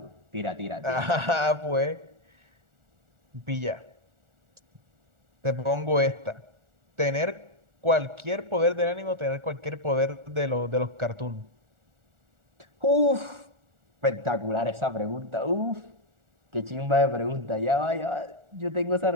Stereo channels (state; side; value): late; left; 1.4 ms